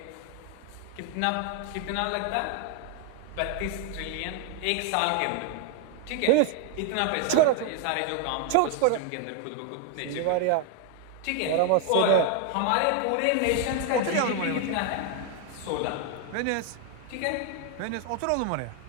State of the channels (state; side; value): different; both; correlation 0.01